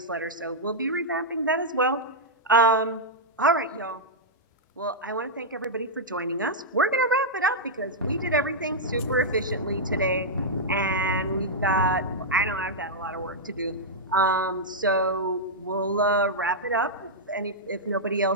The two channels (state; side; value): normal; both; correlation -0.08